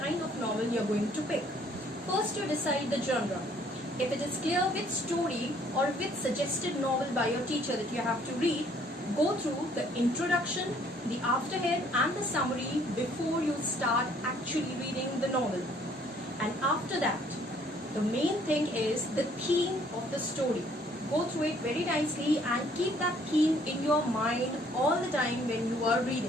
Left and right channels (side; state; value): both; normal; correlation 0.62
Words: of novel you're going to pick. First, you decide the genre. If it is clear which story or which suggested novel by your teacher that you have to read, go through the introduction, the afterhead and the summary before you start actually reading the novel. And after that, the main thing is the theme of the story. Go through it very nicely and keep that theme in your mind all the time when you are